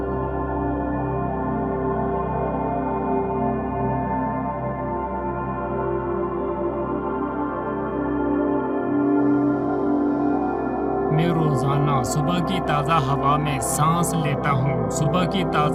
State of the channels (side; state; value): both; identical; correlation 1.00